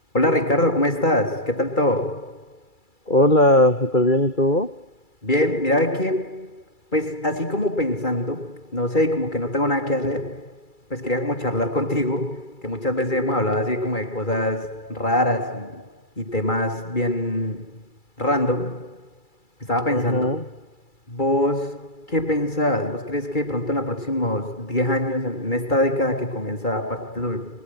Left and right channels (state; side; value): late; right; 2.3 ms